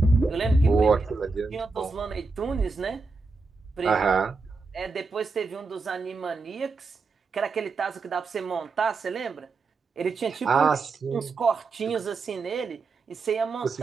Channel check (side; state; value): left; quieter; 4.0 dB